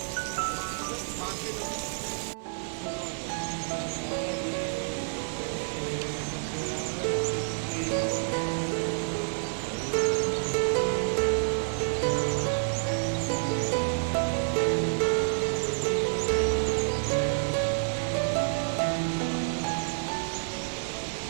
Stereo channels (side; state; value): left; silent; 55 dB below the other